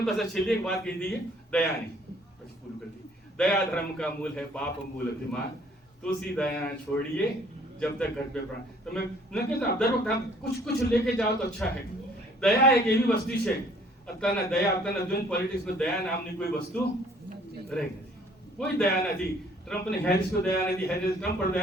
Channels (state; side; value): normal; both; correlation 0.58